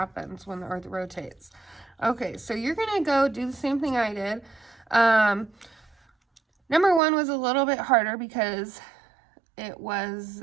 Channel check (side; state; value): left; drops out; at 7.0 s